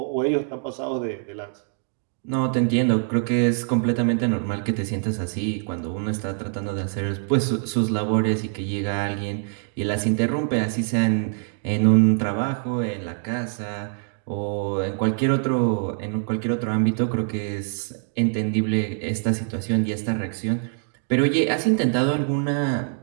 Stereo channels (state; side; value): silent; left; 57 dB below the other